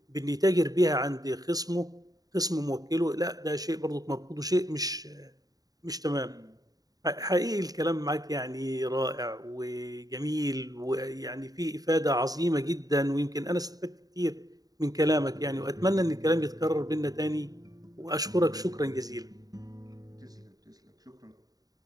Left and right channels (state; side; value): late; left; 0.18 ms